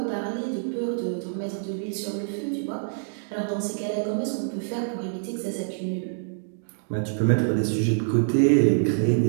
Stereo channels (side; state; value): left; silent; digital silence